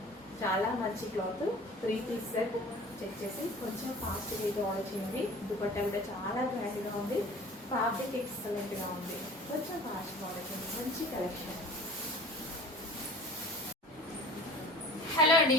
చాలా మంచి క్లాత్. 3 పీస్ సెట్ చెక్ చేసి కొంచెం ఫాస్ట్గా అయితే ఆర్డర్ చేయండి. దుపట్టా కూడా చాలా గ్రాండ్గా ఉంది, ఫ్యాబ్రిక్ ఎక్సలెంట్గా ఉంది. కొంచెం ఫాస్ట్గా ఆర్డర్ చేయండి. మంచి కలెక్షన్. హలో అండి,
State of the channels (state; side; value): normal; both; correlation 0.43